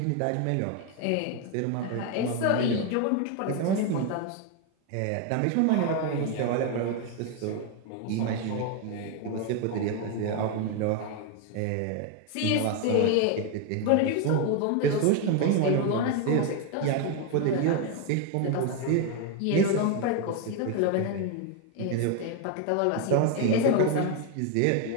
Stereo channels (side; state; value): both; different; correlation 0.01